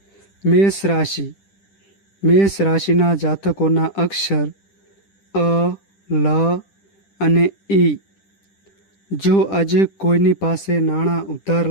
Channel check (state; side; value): late; right; 10 ms